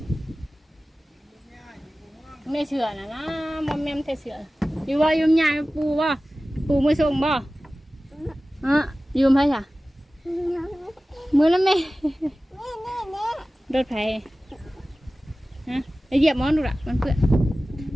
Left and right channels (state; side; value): normal; both; correlation 0.96